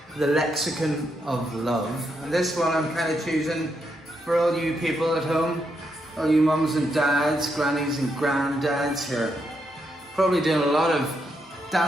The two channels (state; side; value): normal; both; correlation 0.80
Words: The Lexicon of Love. And this one I'm kind of choosing for all you people at home, all you mums and dads, grannies and granddads who are probably doing a lot of